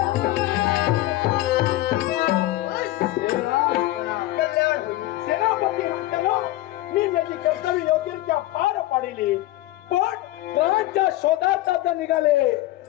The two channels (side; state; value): right; quieter; 16.5 dB